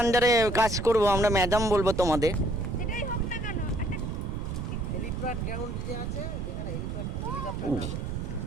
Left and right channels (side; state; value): right; noise; rumble, 4 dB below the sound